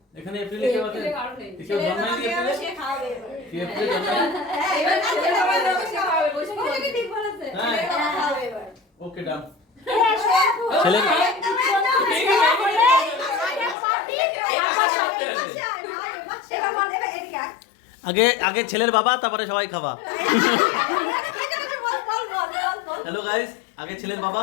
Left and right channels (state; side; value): drops out; right; at 13.8 s